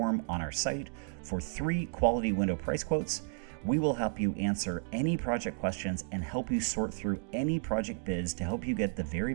on our site for 3 quality window price quotes. We will help you answer any project questions and help you sort through any project bids to help you get the very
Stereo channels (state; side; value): quieter; left; 38.3 dB